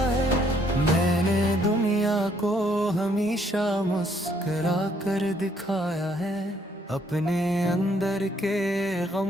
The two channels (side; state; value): both; normal; correlation 0.68